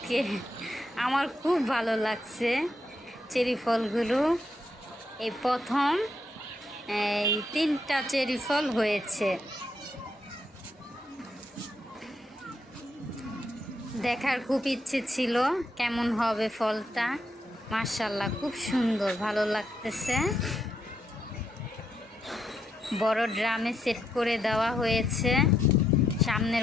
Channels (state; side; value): normal; both; correlation 0.79